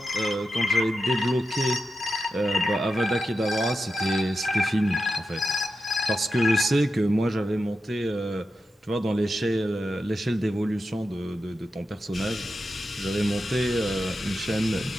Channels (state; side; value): normal; both; correlation 0.89